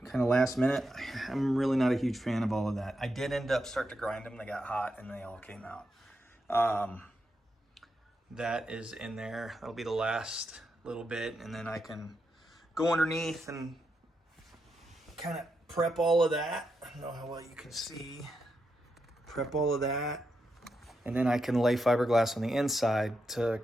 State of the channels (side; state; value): both; normal; correlation 0.84